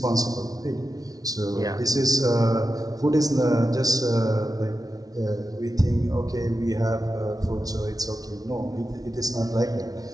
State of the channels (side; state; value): left; late; 0.18 ms